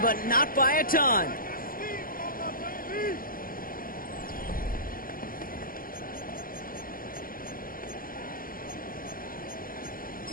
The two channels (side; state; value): right; late; 0.41 ms